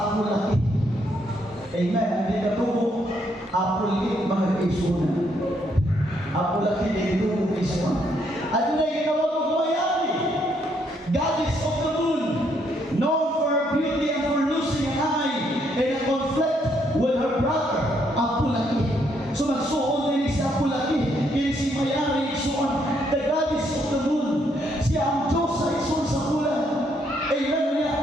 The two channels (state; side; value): normal; both; correlation 0.73